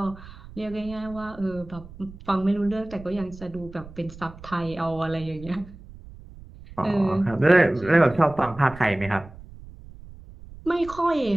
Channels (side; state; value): right; noise; rumble, 17 dB below the sound